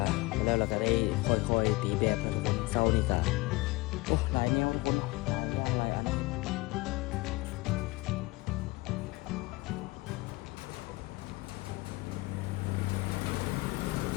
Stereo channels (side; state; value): right; quieter; 22.3 dB